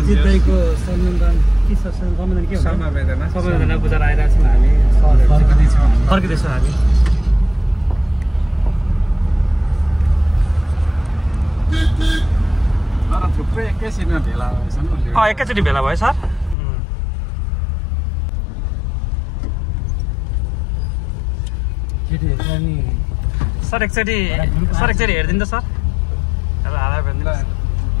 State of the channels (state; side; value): drops out; right; at 16.6 s